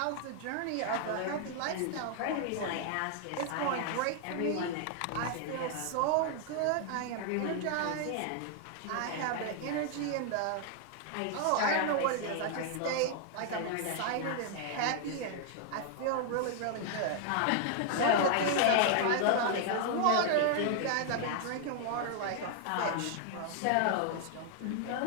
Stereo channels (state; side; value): different; both; correlation 0.00